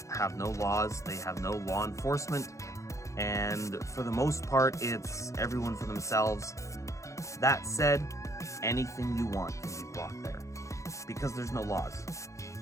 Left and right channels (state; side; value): late; right; 0.15 ms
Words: have no laws, they have no law enforcement, and for the most part, it's everyone for themselves. That said, anything you want can be bought there, because there's no laws.